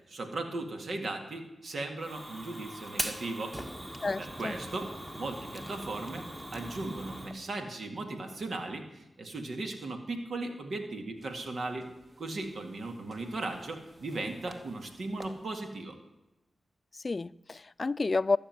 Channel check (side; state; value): both; normal; correlation 0.90